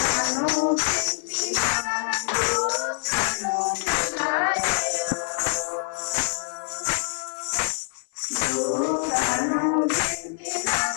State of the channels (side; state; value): right; silent; 58 dB below the other